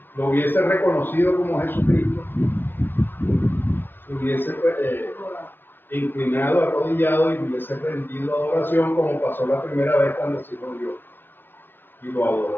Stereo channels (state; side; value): late; right; 0.096 ms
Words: lo hubiese reconocido como Jesucristo, se hubiese inclinado, arrodillado y hubiese rendido adoración como pasó la primera vez cuando se lo vio y lo